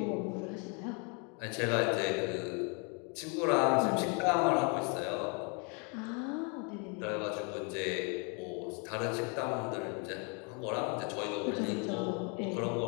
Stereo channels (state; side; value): quieter; right; 35.1 dB